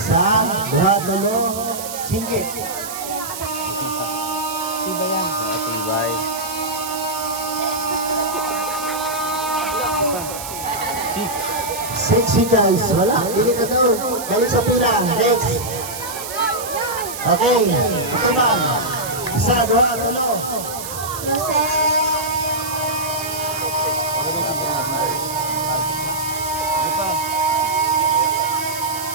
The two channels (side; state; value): right; noise; hiss, 9 dB below the sound